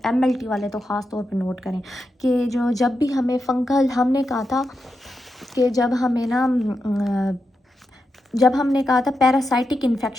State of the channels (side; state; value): both; normal; correlation 0.87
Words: एमएलटी वाले तो ख़ास तौर पे नोट करें कि जो जब भी हमें फंगल, हमने कहा था कि जब हमें ना जब हमने कहा था पैरासाइटिक